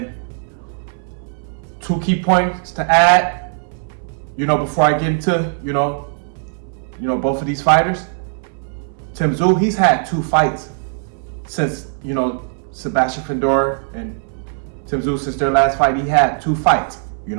2 key points to add. You know, before I get into you know both of these fighters. Tszyu, he's had 2 fights since Sebastian Fundora and Tszyu, since their last fight. He had 2 fights. You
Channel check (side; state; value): left; silent; 65 dB below the other